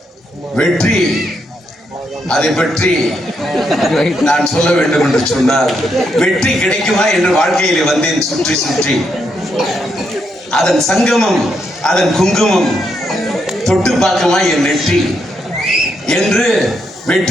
வெற்றி அதை பற்றி நான் சொல்ல வேண்டும் என்று சொன்னால், வெற்றி கிடைக்குமா என்று வாழ்க்கையிலே வந்தேன் சுற்றி சுற்றி. அதன் சங்கமம், அதன் குங்குமம் தொட்டு பார்க்குமா என் நெற்றி என்று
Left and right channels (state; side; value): normal; both; correlation 0.79